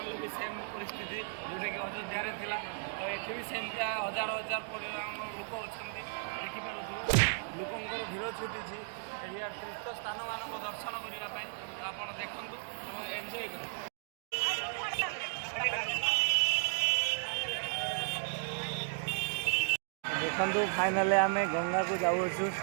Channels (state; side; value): silent; left; digital silence